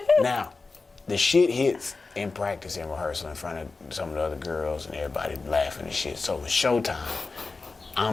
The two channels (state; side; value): quieter; right; 4.0 dB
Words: Now, the shit hits in practice and rehearsal in front of some of the other girls and everybody laughing and shit. So it's showtime.